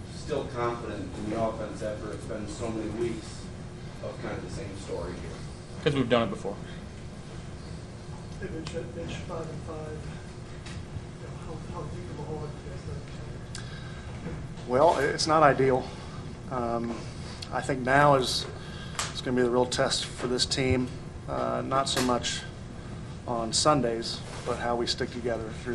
still confident in the offense after it's been so many weeks of kind of the same story here? Because we've done it before. Hey, Mitch, 5-5. How deep of a hole have you guys done? Well, it's not ideal. I think now is going to be the real test for this team, not so much on Sundays, but how we stick together through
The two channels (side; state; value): both; identical; correlation 1.00